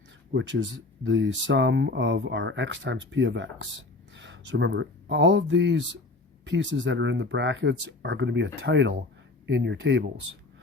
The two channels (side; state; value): right; quieter; 3.2 dB